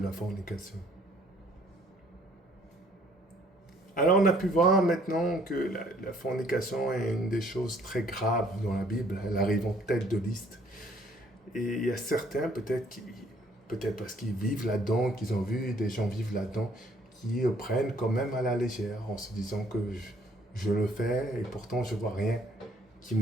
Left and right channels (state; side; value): normal; both; correlation 0.61